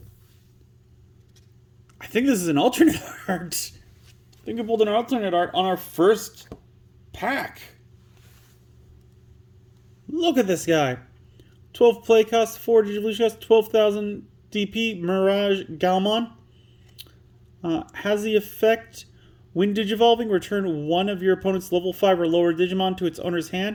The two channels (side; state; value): both; identical; correlation 1.00